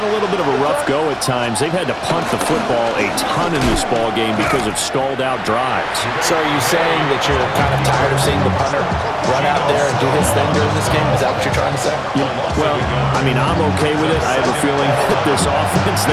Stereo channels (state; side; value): identical; both; correlation 1.00